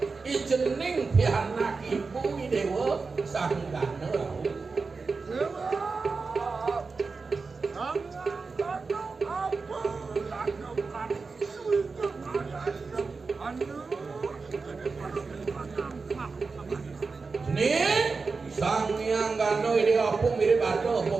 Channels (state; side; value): quieter; left; 4.4 dB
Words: ijening pianak ibu dewa sanggana sang yang gano ini apa mirip ada apa